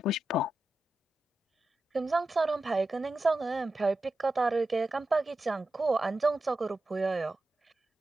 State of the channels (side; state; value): both; normal; correlation 0.91